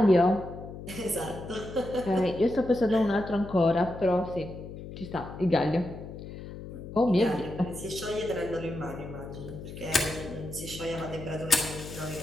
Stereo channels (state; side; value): noise; left; hum, 11 dB below the sound